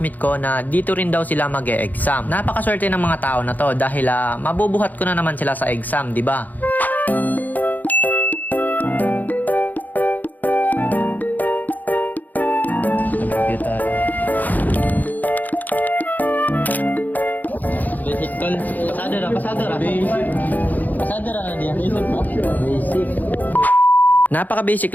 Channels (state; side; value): late; right; 0.082 ms